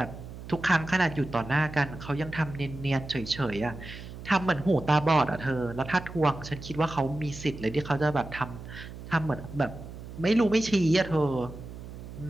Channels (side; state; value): right; noise; hum, 12 dB below the sound